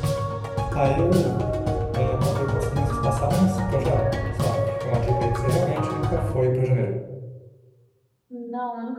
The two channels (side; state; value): both; identical; correlation 1.00